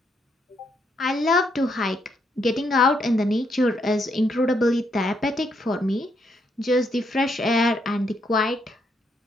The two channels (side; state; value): both; normal; correlation 0.76